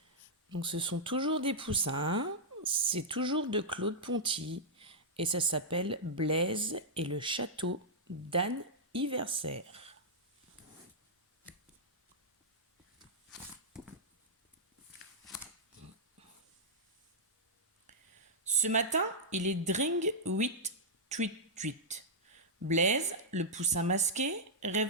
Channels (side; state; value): both; normal; correlation -0.08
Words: Donc ce sont toujours des poussins, c'est toujours de Claude Ponty et ça s'appelle Blaise et le château d'Anne Iversaire. Ce matin, il est dring 8 tweet tweet. Blaise, le poussin masqué,